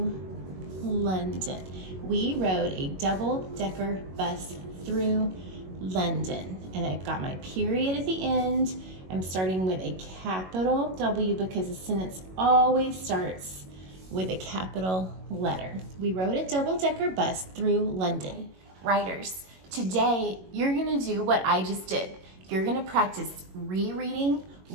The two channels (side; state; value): left; late; 22 ms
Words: We rode a double-decker bus through London. And I've got my period at the end. I'm starting with a capital W because the sentence always starts with a capital letter. We rode a double-decker bus through London. Writers, today you're gonna do what I just did. You're gonna practice rereading